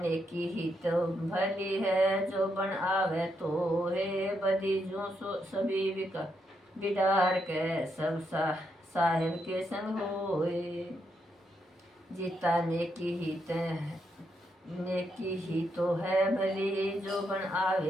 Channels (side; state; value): both; normal; correlation 0.80